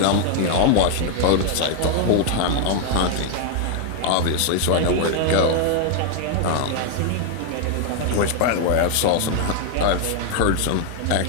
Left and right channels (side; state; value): both; different; correlation 0.00